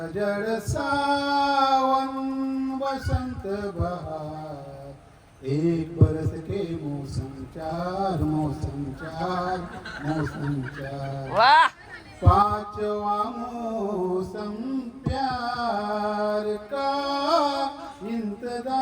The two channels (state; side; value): identical; both; correlation 1.00